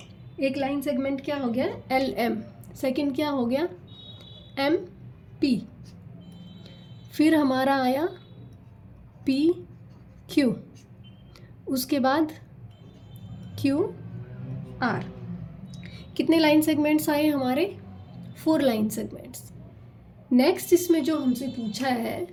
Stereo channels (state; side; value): identical; both; correlation 1.00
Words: एक लाइन सेगमेंट क्या हो गया, एल एम। सेकंड क्या हो गया, एम पी। फिर हमारा आया पी क्यू। उसके बाद क्यू आर। कितने लाइन सेगमेंट्स आए हमारे? 4 लाइन सेगमेंट्स। नेक्स्ट इसमें जो हमसे पूछा है